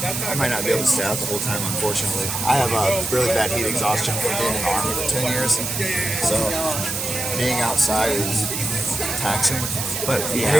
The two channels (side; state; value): right; noise; hiss, 3 dB below the sound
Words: I might not be able to stay out the whole time, unfortunately. I have a really bad heat exhaustion from being in the Army for 10 years. So being outside is taxing. But I